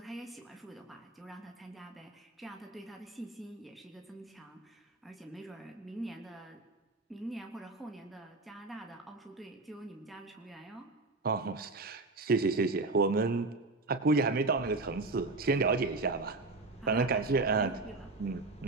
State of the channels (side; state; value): left; quieter; 3.4 dB